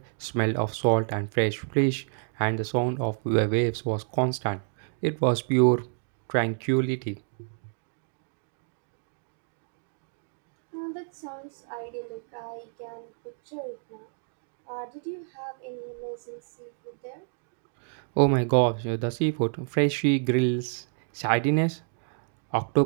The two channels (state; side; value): silent; left; 58 dB below the other